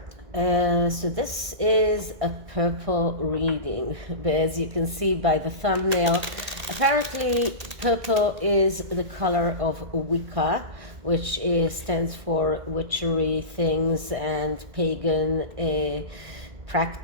So this is a purple reading, but as you can see by the thumbnail, apparently purple is the color of Wicca, which stands for witchery things and pagan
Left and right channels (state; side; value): late; left; 1.6 ms